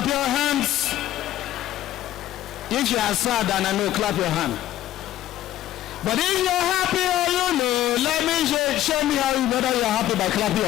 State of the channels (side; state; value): right; quieter; 13.4 dB